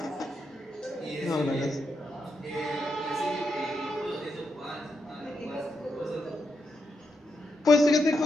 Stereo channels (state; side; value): normal; both; correlation 0.83